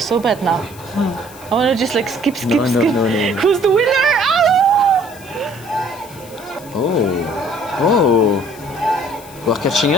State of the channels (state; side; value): noise; left; hiss, 20 dB below the sound